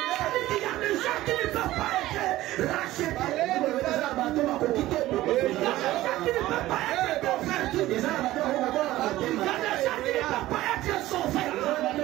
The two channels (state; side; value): quieter; left; 16.0 dB